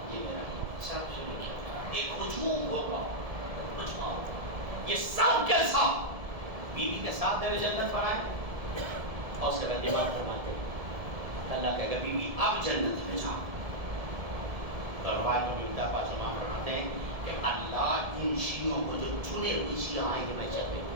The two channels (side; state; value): left; late; 1.7 ms